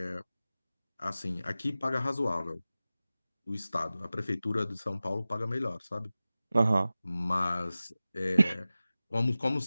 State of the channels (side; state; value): both; inverted; correlation -0.96